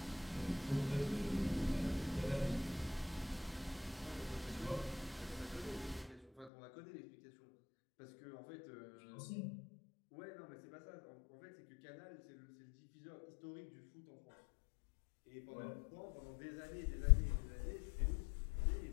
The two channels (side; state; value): right; drops out; at 6.5 s